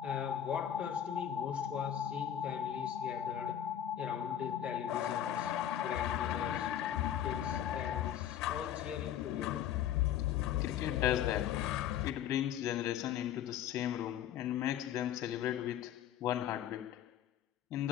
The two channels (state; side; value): quieter; right; 10.4 dB